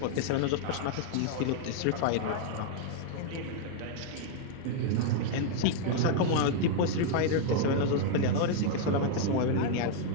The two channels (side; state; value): both; different; correlation -0.01